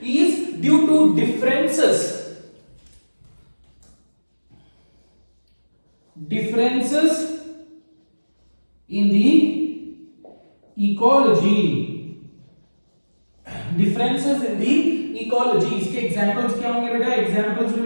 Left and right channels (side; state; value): both; inverted; correlation -1.00